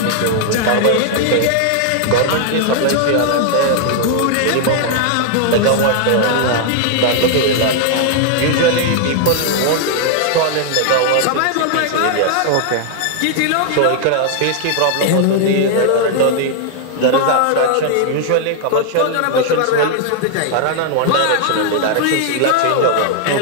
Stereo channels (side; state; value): both; different; correlation -0.01